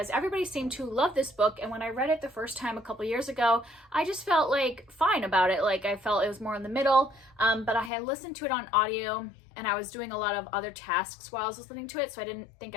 everybody seemed to love this book, and when I read it the first time a couple years ago, I just felt like fine about it. Like I felt it was more in the middle, but I had listened to it on audio and I was doing a lot of other tasks while I was listening to it, so I didn't think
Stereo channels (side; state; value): right; drops out; at 7.9 s